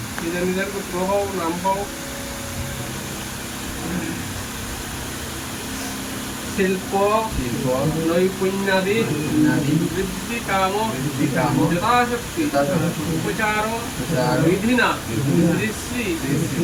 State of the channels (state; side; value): identical; both; correlation 1.00